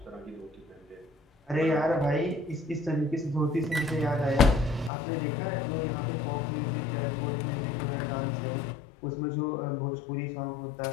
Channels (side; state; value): right; drops out; at 4.9 s